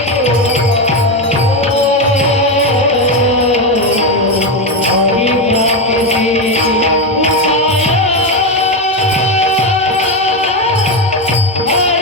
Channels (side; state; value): both; normal; correlation 0.11